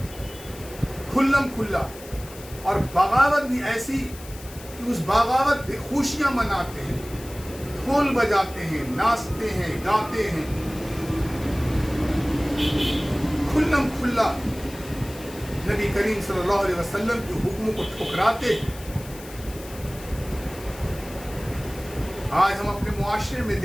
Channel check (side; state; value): left; noise; hiss, 17 dB below the sound